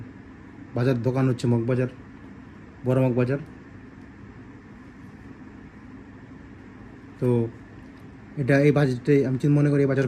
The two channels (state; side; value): identical; both; correlation 1.00